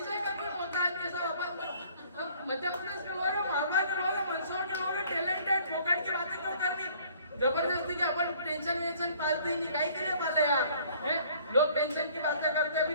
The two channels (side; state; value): both; inverted; correlation -0.56